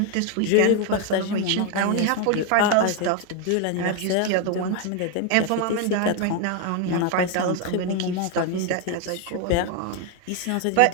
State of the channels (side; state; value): both; different; correlation 0.01